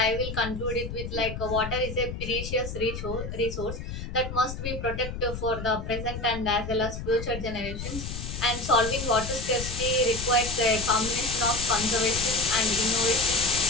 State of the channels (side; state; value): left; noise; rumble, 7 dB below the sound